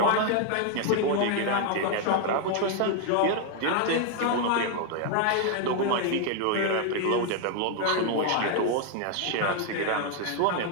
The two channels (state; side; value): different; both; correlation 0.00